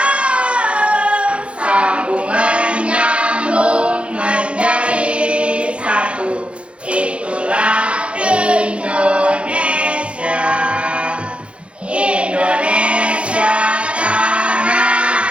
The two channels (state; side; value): late; left; 0.060 ms